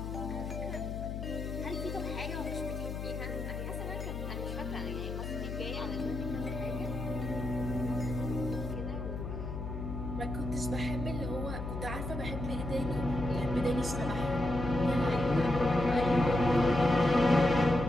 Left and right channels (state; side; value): noise; left; hum, 5 dB below the sound